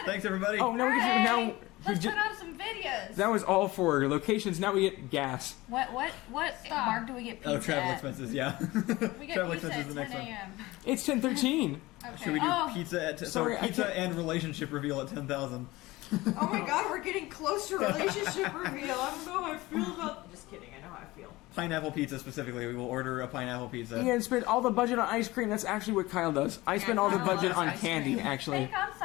Thanks, everybody. Oh, now we Hey, can now. let's put on some videos. That was all for locations. Now we get gas. What mark do we get pizza Oh, travel at? expenses, yeah. We get travel pizza expenses at is the 10 next one. a.m. It's 10:13. Okay. Should we do Oh. pizza at Sorry, I pizza can't- and relationship reveal at 10,000? Oh my god, we're getting close to relationship reveal. I don't know how I feel about. I'm just kidding. I know how I feel. Pineapple pizza specifically. We will order a pineapple pizza. Ian spent all the budget on ice cream. That's actually what Kyle does. I spend all the Kyle budget loves on ice candy, cream. actually. Make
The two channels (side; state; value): right; quieter; 19.7 dB